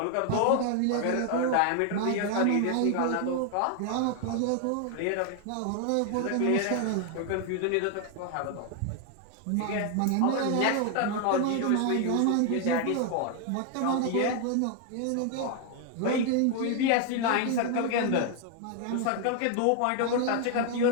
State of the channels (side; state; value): both; different; correlation 0.00